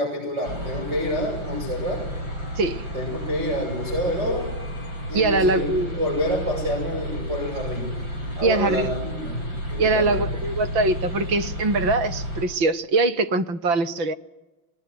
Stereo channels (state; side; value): late; left; 5.9 ms